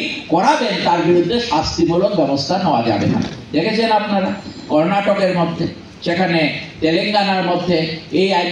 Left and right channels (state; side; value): identical; both; correlation 1.00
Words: করাবেন তার বিরুদ্ধে শাস্তিমূলক ব্যবস্থা নেওয়া যাবে না। দেখেছেন আপনারা কর্ণাটকের মধ্যে, সেখানে তেলেঙ্গানার মধ্যে এই